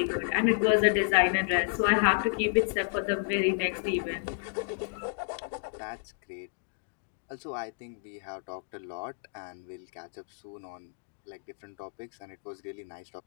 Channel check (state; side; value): silent; right; digital silence